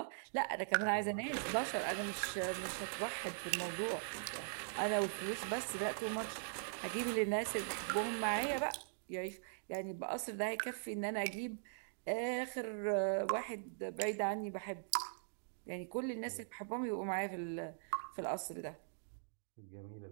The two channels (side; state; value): left; silent; digital silence